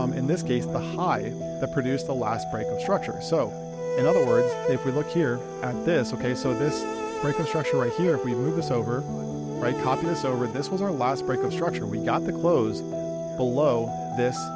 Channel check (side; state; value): both; identical; correlation 1.00